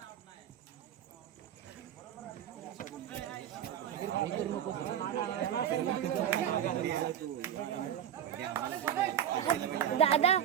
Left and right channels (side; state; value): left; quieter; 10.0 dB